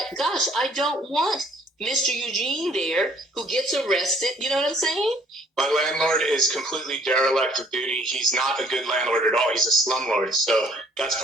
gosh, I don't want Mr. Eugene there who gets arrested. You know what I'm saying? My landlord is completely derelict of duty. He's not a good landlord at all. He's a slumlord. So that's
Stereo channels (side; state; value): both; normal; correlation 0.61